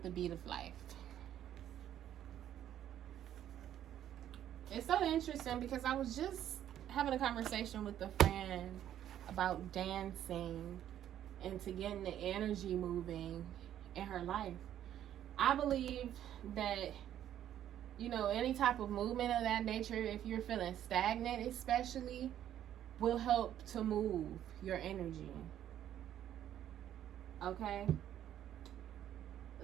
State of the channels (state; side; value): quieter; left; 11.0 dB